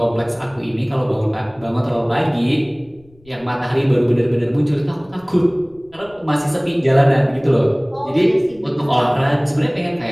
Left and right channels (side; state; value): left; noise; rumble, 29 dB below the sound